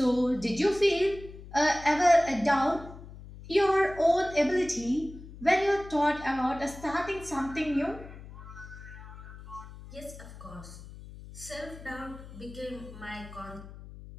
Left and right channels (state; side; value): noise; left; hum, 15 dB below the sound